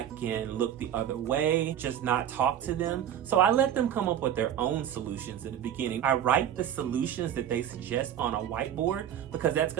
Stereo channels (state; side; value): quieter; left; 10.2 dB